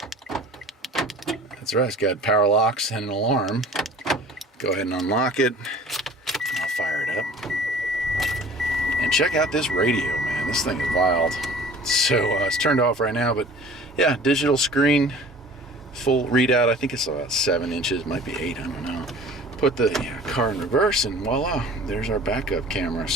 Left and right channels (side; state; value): both; normal; correlation 0.45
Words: That's right, it's got power locks and an alarm. Go ahead and unlock it. I'll fire it up. And check out this radio, man. This thing is wild. So it's turned off right now, but yeah, digital screen, full readout. I think it's about 7 inches, might be 8, I don't know. Put the car in reverse and voila, there's our backup camera.